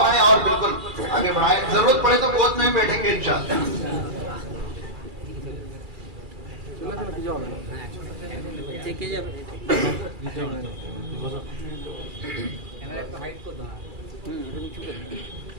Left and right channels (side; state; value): left; late; 2.3 ms